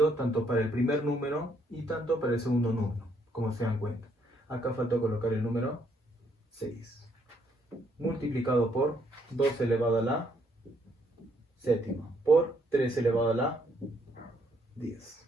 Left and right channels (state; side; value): normal; both; correlation 0.71